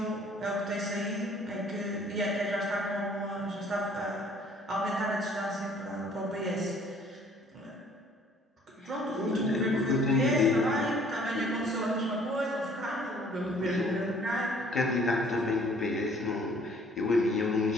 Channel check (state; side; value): normal; both; correlation 0.57